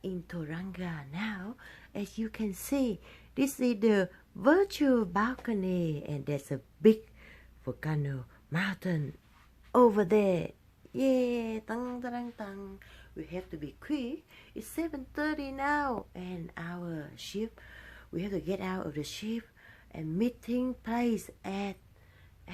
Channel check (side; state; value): both; identical; correlation 1.00